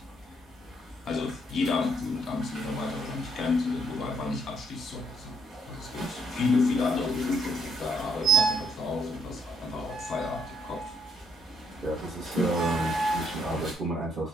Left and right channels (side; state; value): both; normal; correlation 0.70